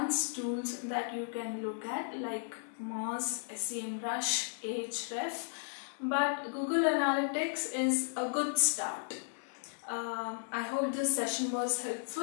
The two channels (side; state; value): right; silent; digital silence